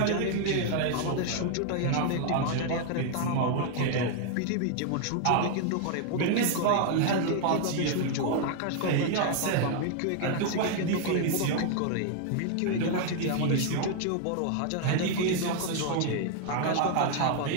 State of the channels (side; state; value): both; different; correlation 0.00